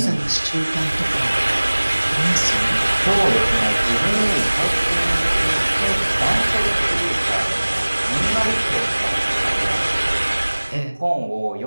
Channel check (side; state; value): both; inverted; correlation -1.00